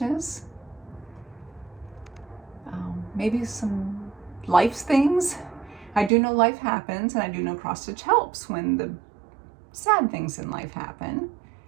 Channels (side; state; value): left; drops out; at 6.1 s